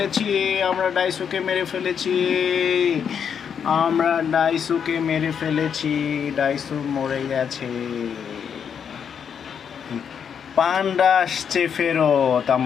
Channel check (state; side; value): quieter; right; 7.5 dB